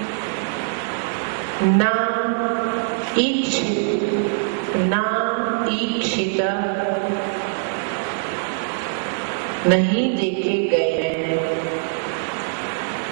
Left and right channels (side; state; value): left; silent; 61 dB below the other